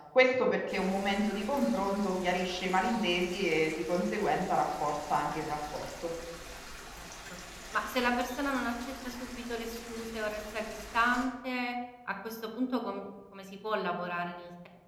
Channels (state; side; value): identical; both; correlation 1.00